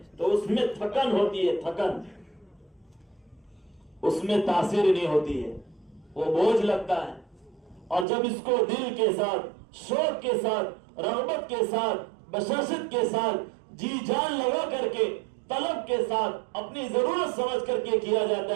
تو اس میں تھکن ہوتی ہے، تھکن، اس میں تاثیر نہیں ہوتی ہے، وہ بوجھ لگتا ہے۔ اور جب اس کو دل کے ساتھ، شوق کے ساتھ، رغبت کے ساتھ، بشاشت کے ساتھ، جی جان لگا کر کے، طلب کے ساتھ، اپنی ضرورت سمجھ کر کے کیا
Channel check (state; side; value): drops out; left; at 8.1 s